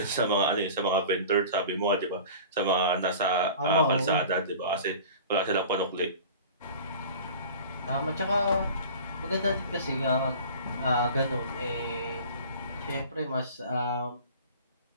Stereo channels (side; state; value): both; inverted; correlation -0.40